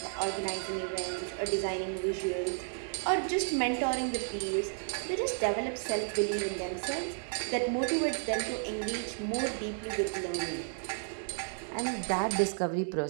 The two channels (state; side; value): silent; left; 56 dB below the other